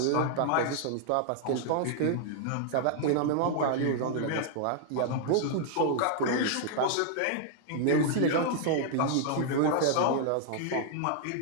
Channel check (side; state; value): both; different; correlation 0.00